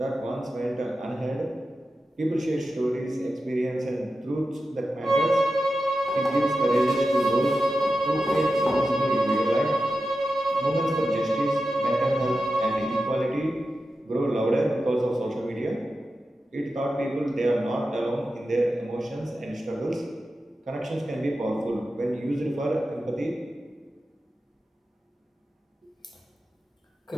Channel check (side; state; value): both; normal; correlation 0.91